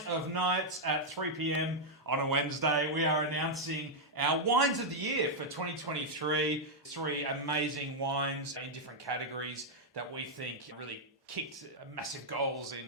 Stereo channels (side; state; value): both; normal; correlation -0.03